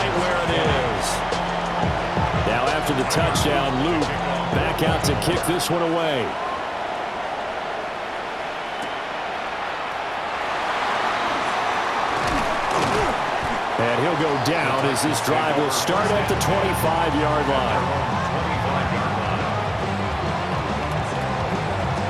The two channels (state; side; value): identical; both; correlation 1.00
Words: where it is. Now after the touchdown, Luke back out to kick this one away. And he'll go down as this drive will start at the 25-yard line.